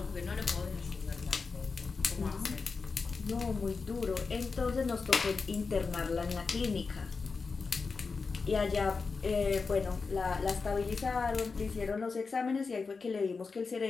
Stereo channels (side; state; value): right; quieter; 4.6 dB